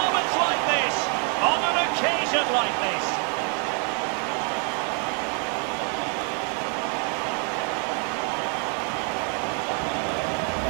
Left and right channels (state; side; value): quieter; left; 39.3 dB